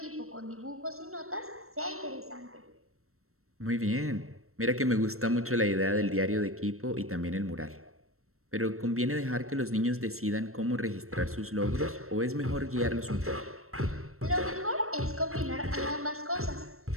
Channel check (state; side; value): late; left; 0.63 ms